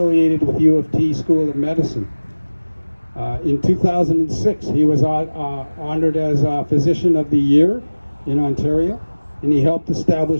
with U of T School of Medicine. In 2006, he was honored as Physician of the Year in Ontario, and he helped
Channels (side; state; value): both; inverted; correlation -1.00